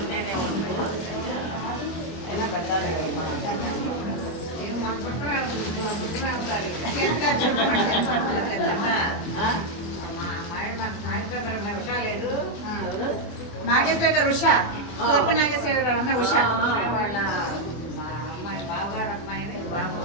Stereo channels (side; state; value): right; late; 25 ms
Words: నాగేశ్వర గారు ఉషా సోప నాగేశ్వర గారు అమ్మాయి ఉషా వాళ్ళ అమ్మాయి బావగారు అమ్మాయిని